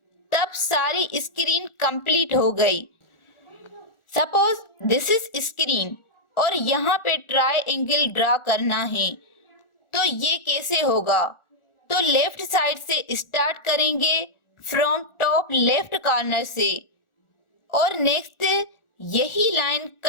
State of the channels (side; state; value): right; late; 1.4 ms